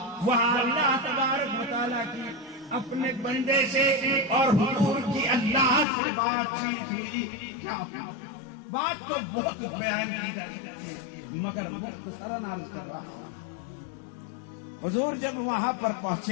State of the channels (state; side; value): drops out; right; at 5.9 s